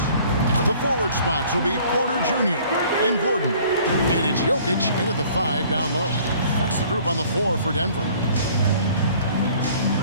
The forward spots will be Porter Jr. and Gordon. And it's Jokic in at the 5 down low. That's the group on the floor for Denver.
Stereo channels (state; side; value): inverted; both; correlation -0.54